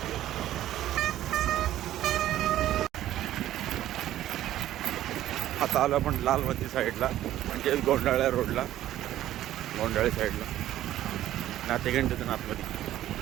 आता आलो आपण लालमती साईडला, म्हणजे गोंडाळ्या रोडला, गोंडाळे साईडला नातेगंडीतून आतमध्ये.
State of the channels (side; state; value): left; quieter; 13.2 dB